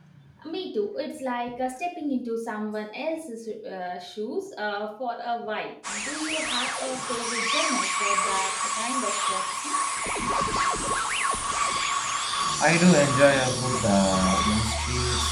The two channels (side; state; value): both; identical; correlation 1.00